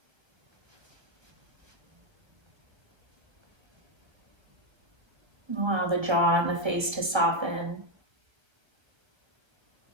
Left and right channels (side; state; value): left; late; 1.3 ms